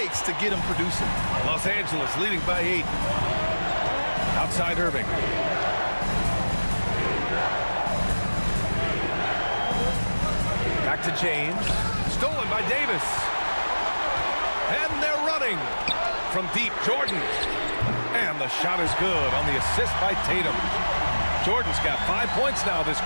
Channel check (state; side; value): inverted; both; correlation -1.00